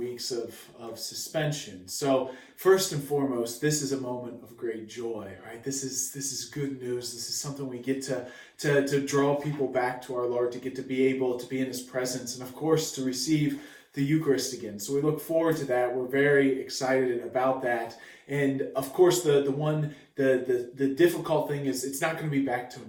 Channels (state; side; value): identical; both; correlation 1.00